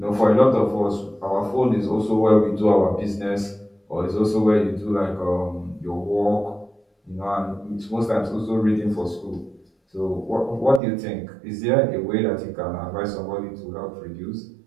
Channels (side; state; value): left; drops out; at 10.8 s